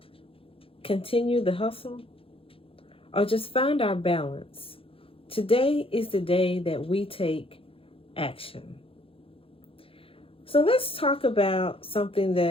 continue the hustle, or just find our balance, today is the day that we take action. So let's talk about something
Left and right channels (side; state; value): right; late; 0.27 ms